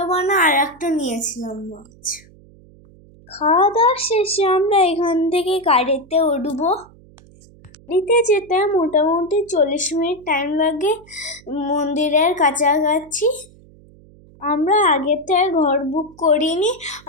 বানা আর একটা নিয়েছিলাম মাছ। খাওয়া দাওয়া শেষে আমরা এখান থেকে গাড়িতে উঠবো। গাড়িতে যেতে মোটামুটি 40 মিনিট টাইম লাগে মন্দিরের কাছাকাছি। আমরা আগের থেকে ঘর বুক করিনি,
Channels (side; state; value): right; noise; hum, 25 dB below the sound